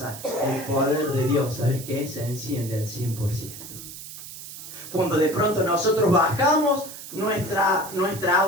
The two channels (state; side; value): noise; right; hiss, 12 dB below the sound